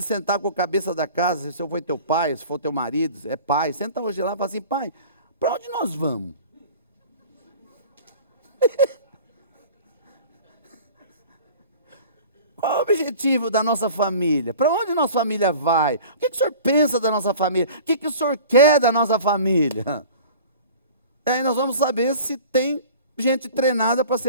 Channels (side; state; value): both; inverted; correlation -0.42